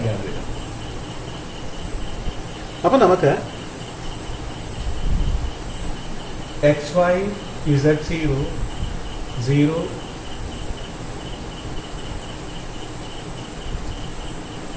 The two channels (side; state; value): both; identical; correlation 1.00